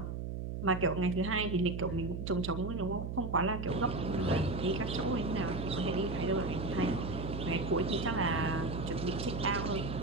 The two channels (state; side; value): noise; right; hum, 4 dB below the sound